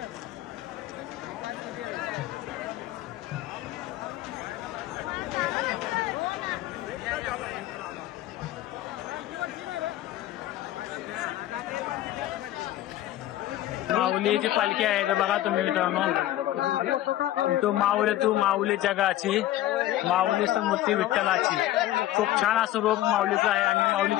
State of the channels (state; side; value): quieter; right; 14.4 dB